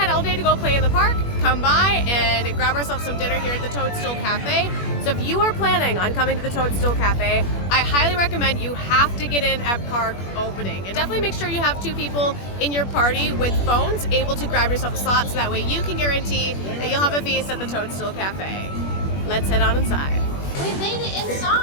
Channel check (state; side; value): late; right; 21 ms